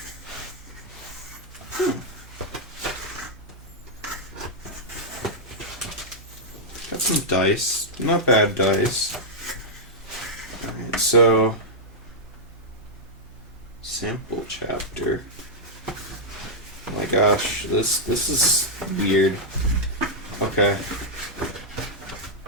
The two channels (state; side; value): normal; both; correlation -0.07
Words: Got some dice. Not bad dice. Alright, so sample chapter. Oh my gosh, this is weird. Okay.